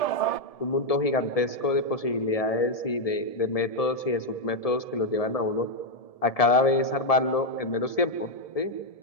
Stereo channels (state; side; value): late; right; 1.7 ms